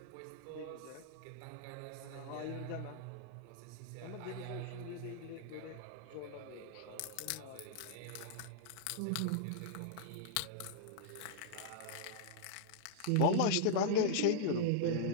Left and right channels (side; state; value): both; different; correlation -0.01